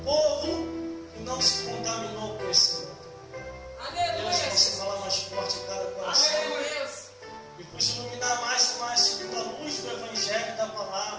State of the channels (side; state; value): both; identical; correlation 1.00